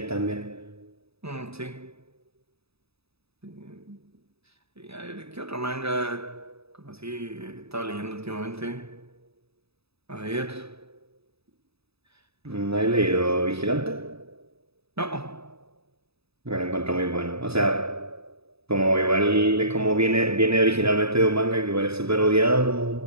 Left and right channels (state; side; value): late; left; 0.78 ms